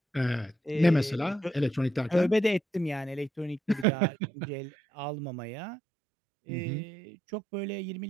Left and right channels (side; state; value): left; drops out; at 3.9 s